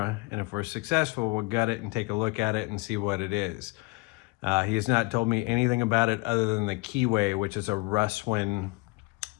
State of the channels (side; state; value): right; quieter; 25.3 dB